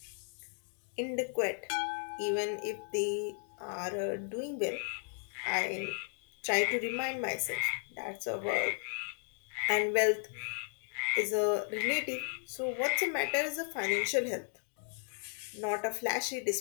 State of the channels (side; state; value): right; silent; 54 dB below the other